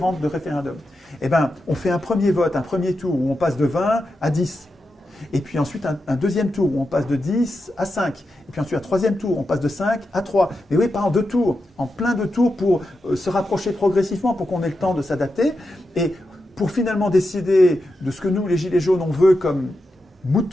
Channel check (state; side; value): normal; both; correlation 0.88